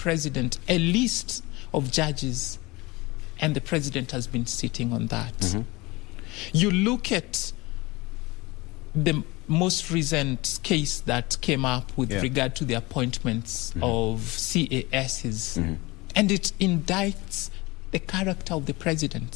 a list of judges, and the president has been sitting on that. You look at the most recent case that came up with regard to the appointments of CASs, and it indicts the character of the president.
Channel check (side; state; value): right; quieter; 22.8 dB